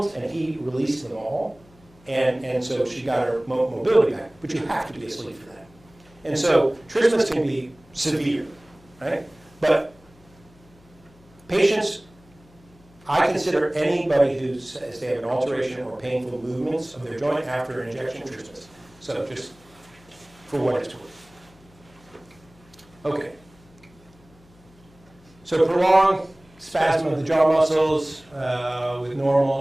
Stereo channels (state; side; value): noise; left; hum, 27 dB below the sound